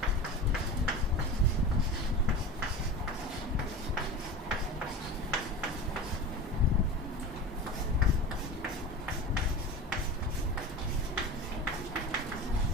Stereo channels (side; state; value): both; normal; correlation 0.30